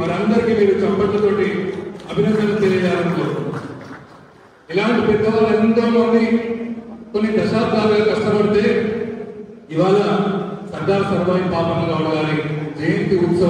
వారందరికీ మీరు చప్పట్లతోటి అభినందనలు తెలియజేయాలని కోరుకుంటున్నాను. ఇలాంటి పెద్దవాళ్ళు ఎంతో మంది కొన్ని దశాబ్దాలుగా కష్టపడితే ఇవాళ సర్దార్ సర్వాయి పాపన్న గౌడ్ గారి జయంతి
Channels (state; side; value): identical; both; correlation 1.00